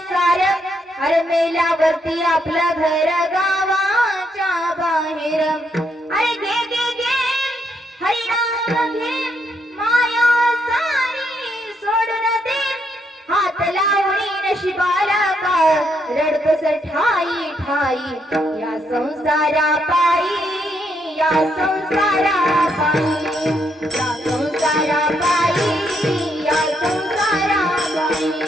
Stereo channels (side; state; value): both; normal; correlation 0.76